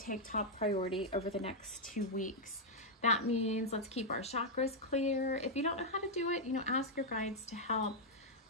take top priority over the next 2 weeks. That means let's keep our chakras clear. If you don't know how to do it, you know, ask your guides to help.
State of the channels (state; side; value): normal; both; correlation -0.02